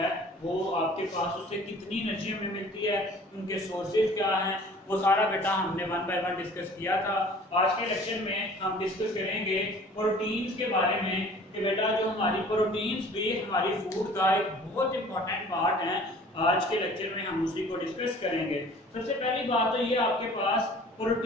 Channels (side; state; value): both; normal; correlation 0.49